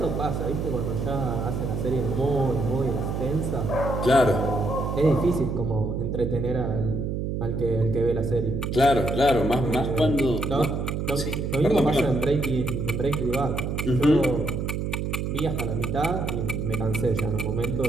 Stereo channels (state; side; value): noise; right; hum, 2 dB below the sound